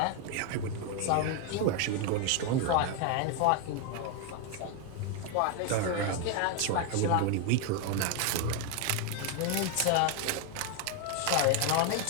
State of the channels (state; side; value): different; both; correlation 0.01